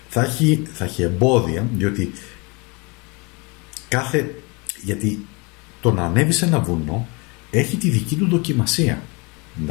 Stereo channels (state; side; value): quieter; right; 28.9 dB